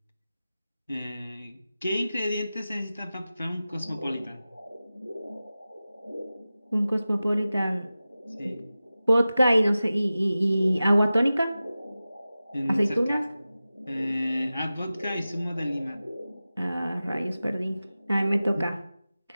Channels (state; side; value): inverted; both; correlation -0.95